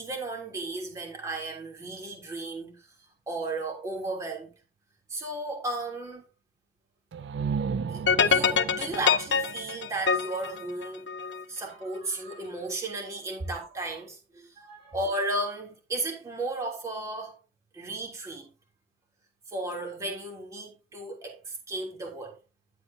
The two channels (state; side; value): normal; both; correlation 0.02